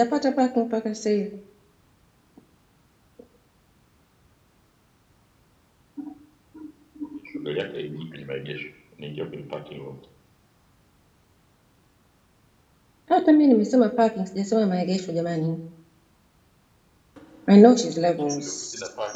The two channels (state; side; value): identical; both; correlation 1.00